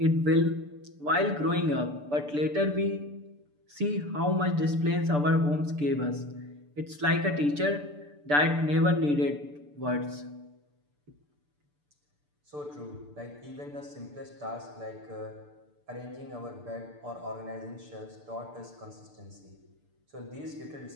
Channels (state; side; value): late; left; 6.8 ms